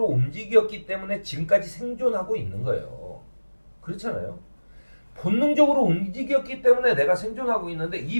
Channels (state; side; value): inverted; both; correlation -1.00